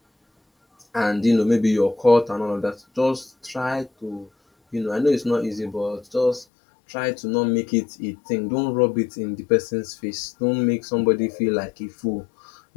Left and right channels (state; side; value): drops out; right; at 6.5 s